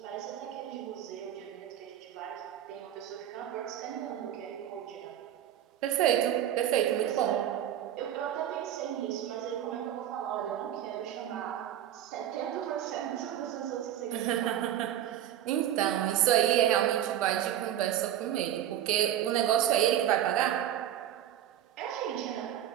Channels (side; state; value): left; quieter; 11.2 dB